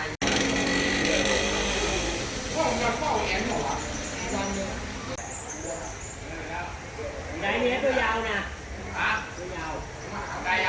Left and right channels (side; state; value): both; identical; correlation 1.00